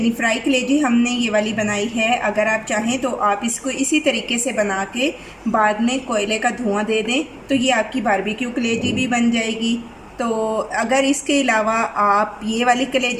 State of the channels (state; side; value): identical; both; correlation 1.00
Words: फ्राई कलेजी हमने ये वाली बनाई है, अगर आप चाहें तो आप इसको इसी तरीके से बना के बाद में कोयले का धुआं दे दें तो ये आपकी बारबेक्यू कलेजी भी बन जाएगी। तो अगर इसके अलावा आप ये वाली